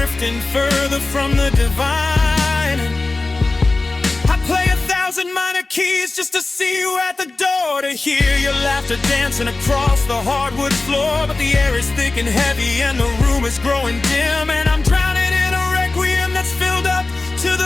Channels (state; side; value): quieter; right; 3.3 dB